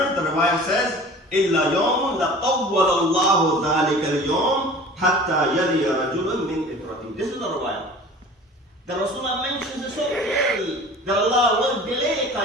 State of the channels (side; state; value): both; normal; correlation 0.43